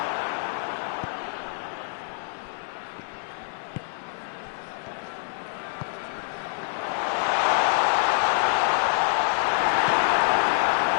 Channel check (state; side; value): silent; right; 58 dB below the other